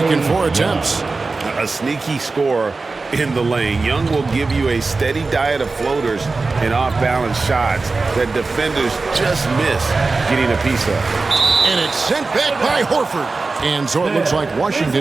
in 4 attempts. A sneaky scorer in the lane. Young will give you a steady diet of floaters and off-balance shots that defenders just miss getting a piece of. And it's sent back by Horford. And so it looks like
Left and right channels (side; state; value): left; quieter; 3.8 dB